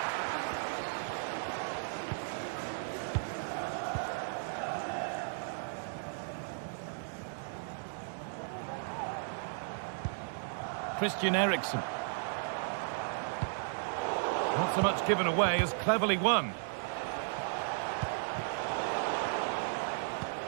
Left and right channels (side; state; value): left; silent; digital silence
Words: Christian Eriksen. Not so much given away as cleverly won.